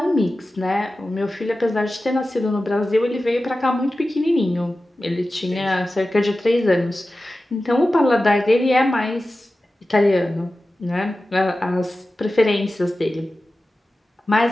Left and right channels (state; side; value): normal; both; correlation 0.94